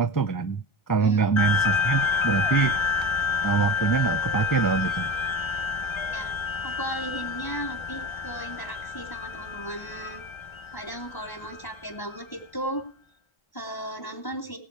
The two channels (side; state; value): right; late; 1.3 ms